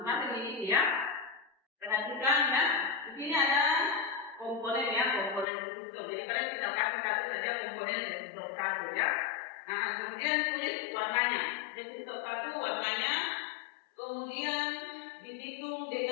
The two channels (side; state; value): right; drops out; at 5.5 s